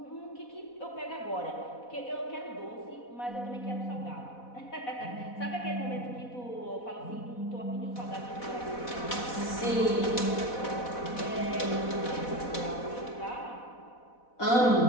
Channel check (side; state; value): right; late; 4.1 ms